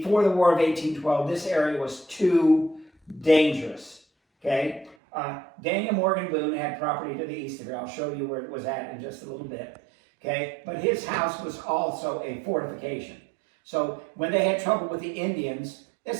the War of 1812, this area was too dangerous. Okay. Daniel Morgan Boone had property to the east of here. I'll show you where it was at in just a little bit. Okay. But his house was also a fortification. So when they had trouble with the Indians,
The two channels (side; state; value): left; drops out; at 5.0 s